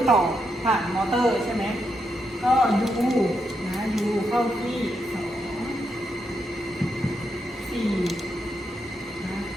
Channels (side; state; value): both; normal; correlation 0.82